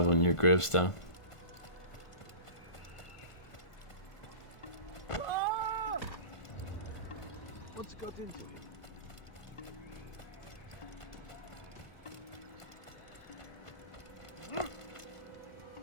on your gravestone.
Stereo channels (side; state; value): right; late; 1.5 ms